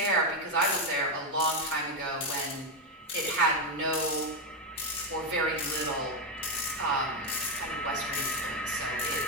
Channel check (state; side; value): normal; both; correlation 0.07